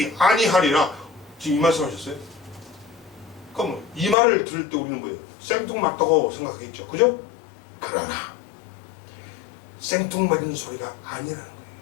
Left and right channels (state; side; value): drops out; right; at 4.2 s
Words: 아니하리라. 지금 이 말씀하셨어요? 그럼 이 말을 들을 때 우리는 뭐예요? 생뚱맞다고 생각하겠죠, 그죠? 그러나 생뚱맞은 소리가 아니라는